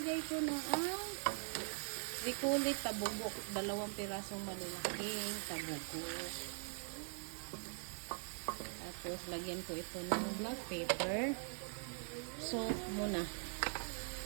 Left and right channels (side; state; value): left; silent; digital silence